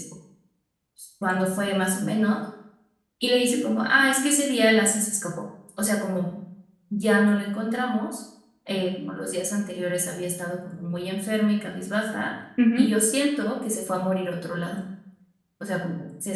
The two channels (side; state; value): both; identical; correlation 1.00